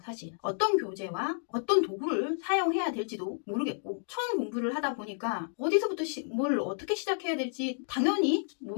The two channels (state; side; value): silent; right; digital silence